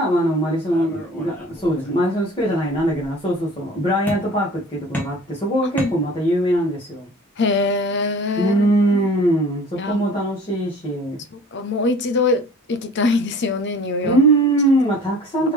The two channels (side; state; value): both; normal; correlation 0.46